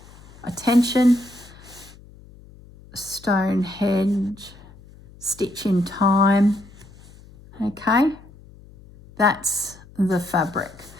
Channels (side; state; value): left; noise; hum, 22 dB below the sound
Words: attention. Stonehenge, Stitch in Time. Okay, that's the fabric.